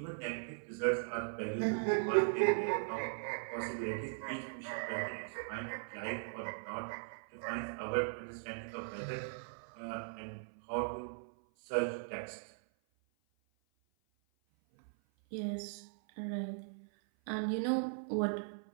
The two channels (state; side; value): silent; left; 52 dB below the other